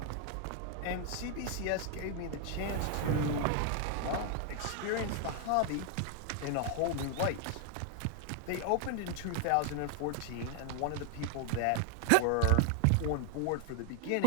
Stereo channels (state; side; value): different; both; correlation 0.00